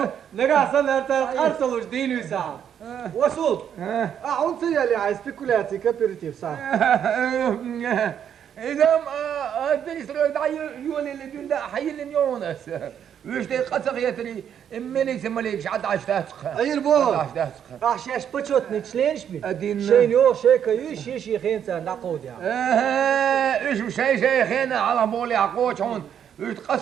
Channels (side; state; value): left; quieter; 8.9 dB